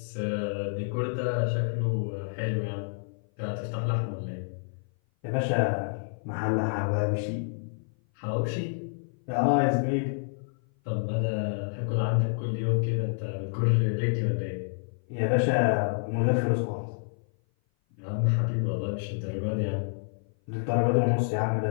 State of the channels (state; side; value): silent; right; 56 dB below the other